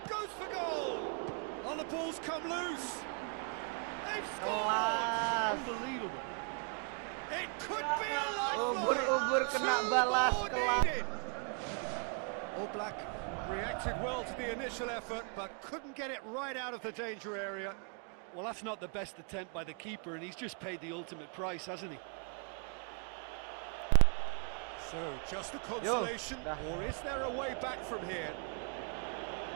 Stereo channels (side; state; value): left; quieter; 36.1 dB